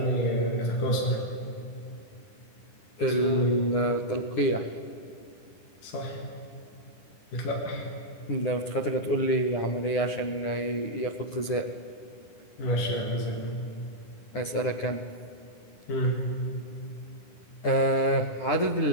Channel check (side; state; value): right; late; 9.9 ms